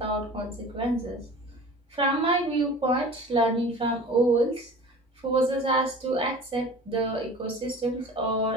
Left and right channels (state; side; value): normal; both; correlation 0.40